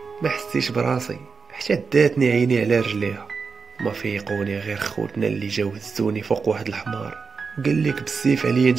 ما حسيتش براسي حتى داتني عيني على رجليها. ما فيقوني غير خوتنا اللي جاو هزوني فوق واحد الحمار، وقال لك بالسيف عليا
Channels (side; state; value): left; quieter; 5.1 dB